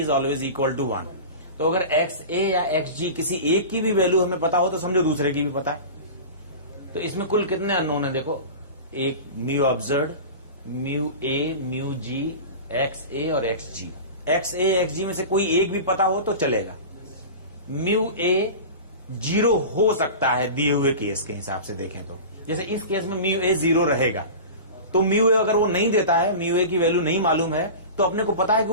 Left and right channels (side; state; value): both; inverted; correlation -0.32